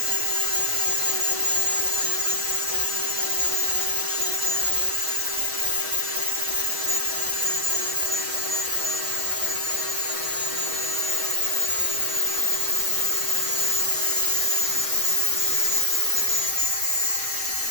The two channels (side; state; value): left; late; 6.3 ms